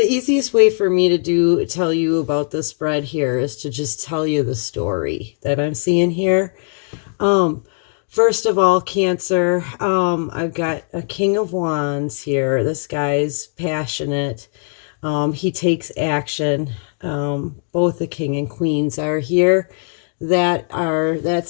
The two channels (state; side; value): silent; right; 55 dB below the other